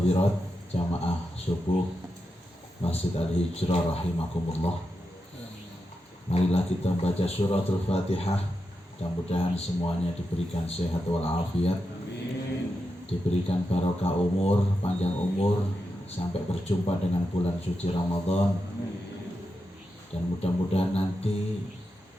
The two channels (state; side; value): normal; both; correlation 0.88